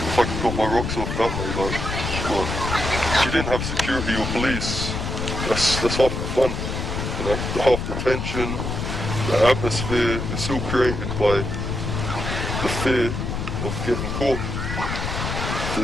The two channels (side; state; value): left; noise; rumble, 3 dB below the sound